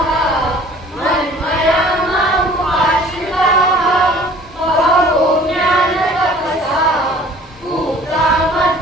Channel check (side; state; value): both; normal; correlation 0.50